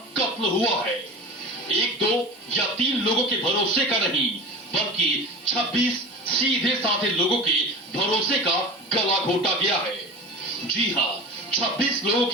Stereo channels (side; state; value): both; normal; correlation 0.33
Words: कत्ल हुआ है। 1, 2 या 3 लोगों के भरोसे का नहीं, बल्कि 26 सीधे साधे लोगों के भरोसे का गला घोटा गया है। जी हां, 26 लोगों